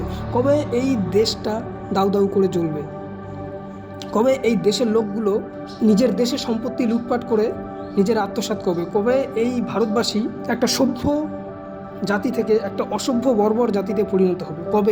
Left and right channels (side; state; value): both; identical; correlation 1.00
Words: কবে এই দেশটা দাউ দাউ করে জ্বলবে, কবে এই দেশের লোকগুলো নিজের দেশের সম্পত্তি লুটপাট করে নিজের আত্মসাৎ করবে, কবে এই ভারতবাসী একটা সভ্য জাতি থেকে একটা অসভ্য বর্বর জাতিতে পরিণত হবে,